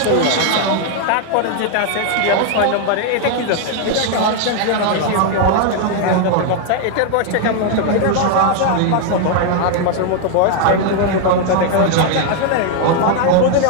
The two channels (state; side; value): different; both; correlation 0.00